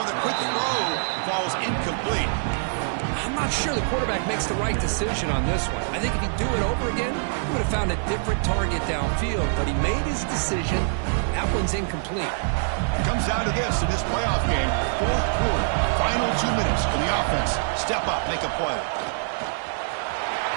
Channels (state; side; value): silent; left; 61 dB below the other